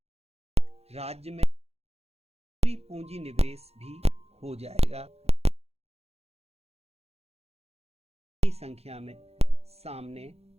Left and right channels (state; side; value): late; left; 0.30 ms